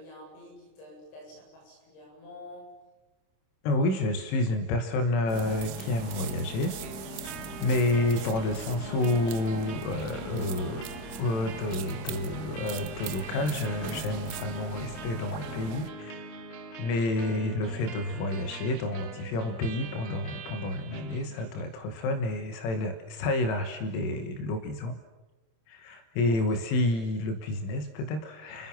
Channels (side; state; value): right; late; 26 ms